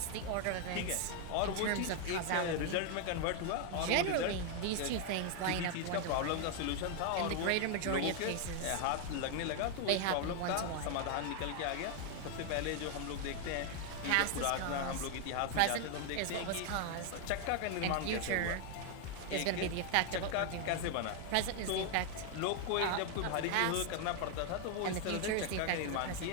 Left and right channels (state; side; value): different; both; correlation 0.00